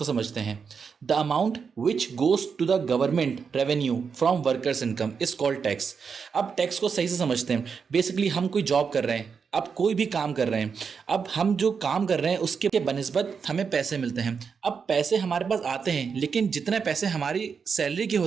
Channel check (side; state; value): left; quieter; 6.0 dB